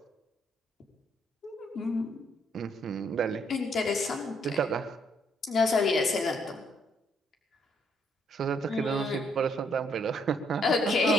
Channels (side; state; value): both; normal; correlation 0.70